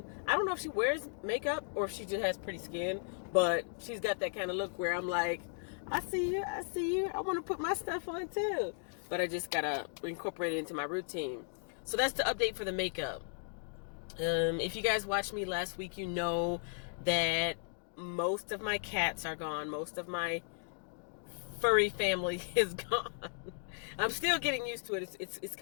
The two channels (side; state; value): right; silent; digital silence